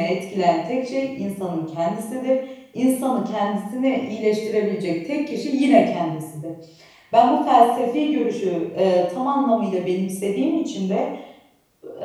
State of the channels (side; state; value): both; identical; correlation 1.00